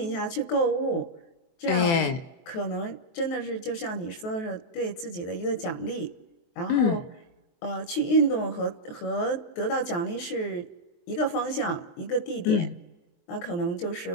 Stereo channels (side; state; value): right; late; 23 ms